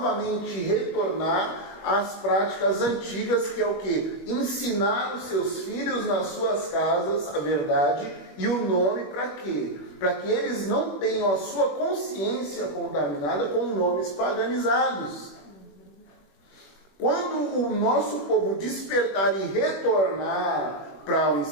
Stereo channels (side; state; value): right; late; 21 ms